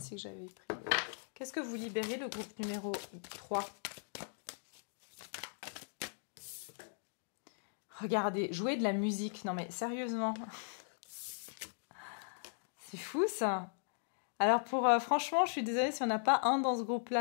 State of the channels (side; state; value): right; silent; digital silence